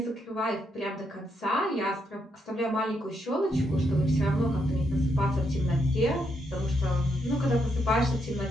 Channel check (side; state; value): both; normal; correlation 0.78